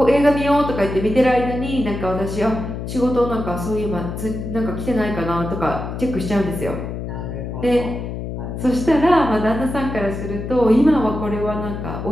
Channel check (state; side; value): noise; left; hum, 6 dB below the sound